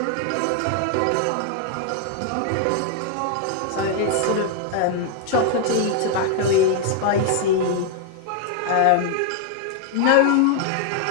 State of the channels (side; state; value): both; different; correlation 0.00